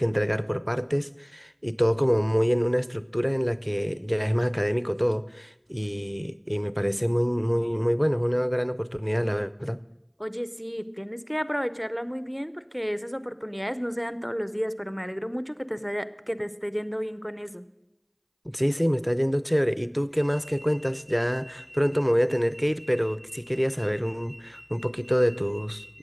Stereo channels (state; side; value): identical; both; correlation 1.00